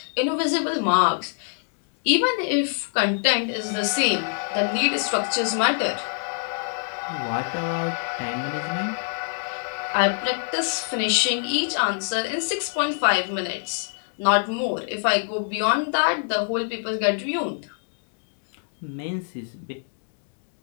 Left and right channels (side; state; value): right; silent; digital silence